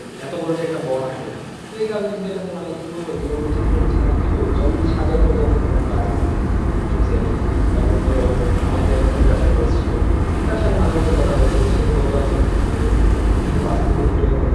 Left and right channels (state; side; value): identical; both; correlation 1.00